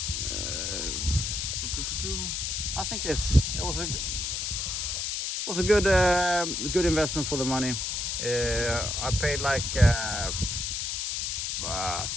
I think it was a good investment for the money. I paid like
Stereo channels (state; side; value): noise; left; hiss, 2 dB below the sound